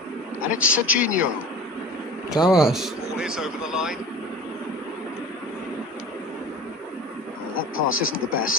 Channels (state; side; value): normal; both; correlation 0.37